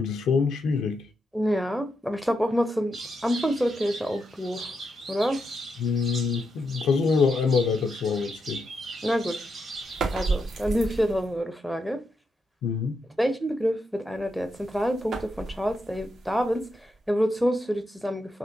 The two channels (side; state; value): both; normal; correlation 0.83